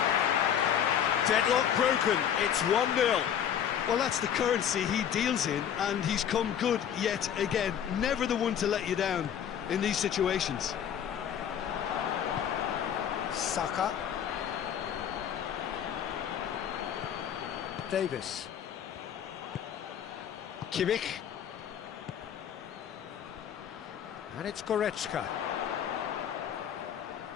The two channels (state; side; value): quieter; right; 9.1 dB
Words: Deadlock broken, it's 1-0. Well, that's the currency he deals in, and he's come good yet again. Never the one to let you down in these situations. Saka. Davis. Kimmich. And it's Goretzka.